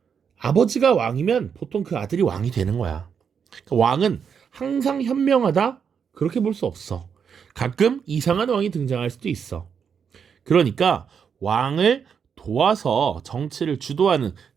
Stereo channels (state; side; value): quieter; left; 7.0 dB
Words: 아버지가 왕이면 보통 그 아들이 왕이 되는 거야. 그러니까 왕은 항상 현명하다, 그렇게 볼 수 없어. 가끔 이상한 왕이 등장할 수도 있어. 그러니까 왕을 도와서 정치를 주도하는